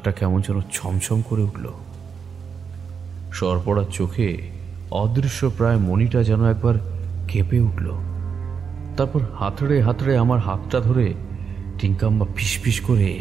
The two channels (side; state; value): left; quieter; 6.3 dB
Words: কেমন যেন ছমছম করে উঠল। সরপড়ার চোখে অদৃশ্য প্রায় মণিটা যেন একবার কেঁপে উঠল। তারপর হাতড়ে হাতড়ে আমার হাতটা ধরে টিঙ্কাম্মা ফিসফিস করে